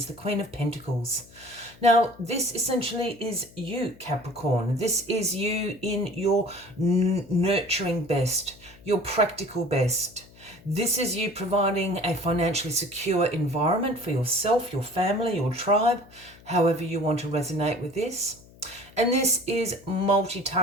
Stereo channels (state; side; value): noise; left; hum, 24 dB below the sound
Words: the Queen of Pentacles. Now, this essentially is you, Capricorn. This is you in your nurturing best, your practical best. This is you providing a financially secure environment for yourself, your family, your tribe, however you want to resonate with this. And this is